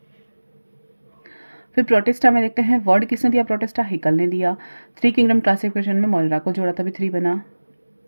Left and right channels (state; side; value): inverted; both; correlation -1.00